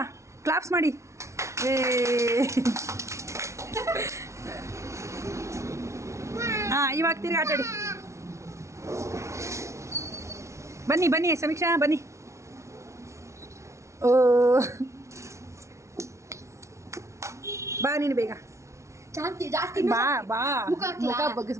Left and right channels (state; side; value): late; left; 0.14 ms